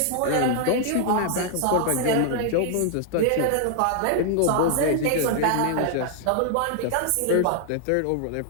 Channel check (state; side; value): different; both; correlation 0.00